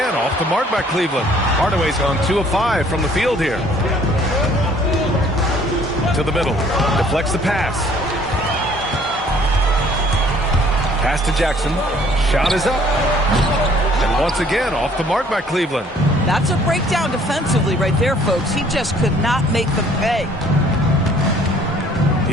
off the mark by Cleveland. Hardaway's gone 2 of 5 from the field here. To the middle. Deflects the pass. Pass to Jackson. Shot is up. And once again, off the mark by Cleveland. That's a breakdown defensively right there, folks. He just could not make them pay.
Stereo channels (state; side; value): normal; both; correlation 0.58